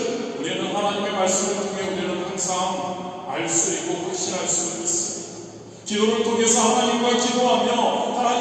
우리는 하나님의 말씀을 통해 우리는 항상 알 수 있고 확신할 수 있습니다. 기도를 통해서 하나님과 기도하며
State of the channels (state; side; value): identical; both; correlation 1.00